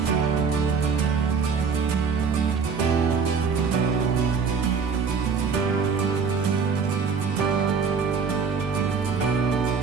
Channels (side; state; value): left; quieter; 5.5 dB